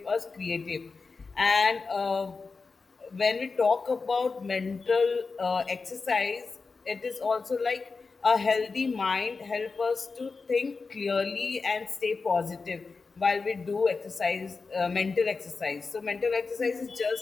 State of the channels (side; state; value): right; quieter; 4.4 dB